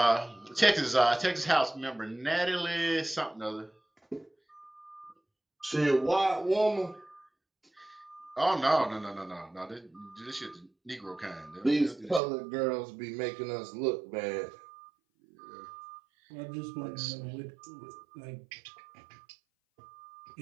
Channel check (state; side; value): drops out; left; at 12.2 s